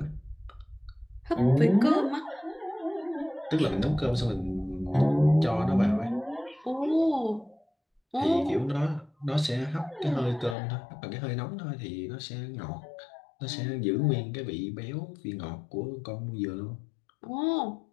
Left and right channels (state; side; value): drops out; right; at 10.6 s